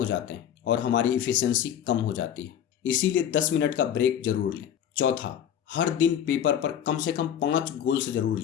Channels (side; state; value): right; quieter; 9.6 dB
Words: जाते हैं और हमारी इफिशियंसी कम हो जाती है। इसीलिए 10 मिनट का ब्रेक जरूर लें। चौथा, हर दिन पेपर पर कम से कम 5 गोल्स जरूर